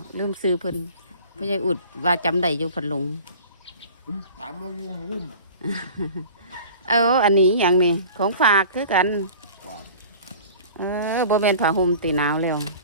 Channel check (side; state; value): both; inverted; correlation -0.43